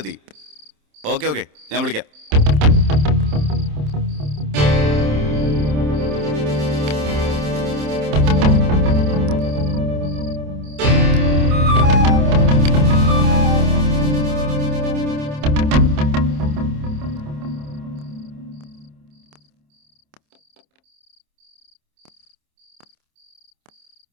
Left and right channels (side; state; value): left; late; 27 ms